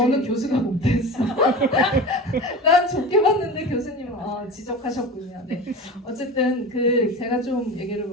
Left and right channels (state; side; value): normal; both; correlation 0.30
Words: 교수가 못됐어. 난 좋게 봤는데 교수님은 지적하셨군요. 네. 어쨌든 제가 좀 얘기를